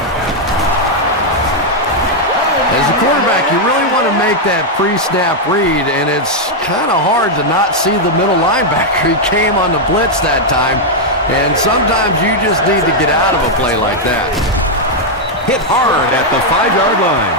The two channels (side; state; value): both; normal; correlation -0.01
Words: As a quarterback, you really want to make that pre-snap read, and it's kind of hard to not see the middle linebacker. He came on the blitz that time, and sometimes you just need to get out of a play like that. Hit hard at the 5-yard line.